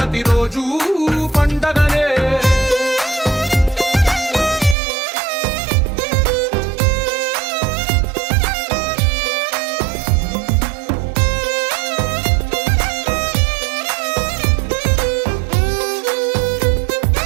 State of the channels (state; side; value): drops out; left; at 4.8 s